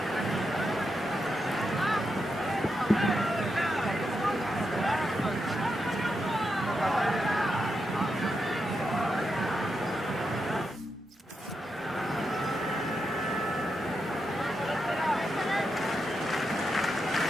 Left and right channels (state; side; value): normal; both; correlation 0.85